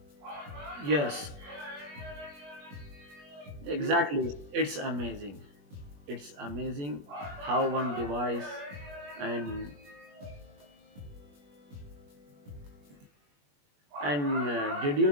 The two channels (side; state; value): left; late; 21 ms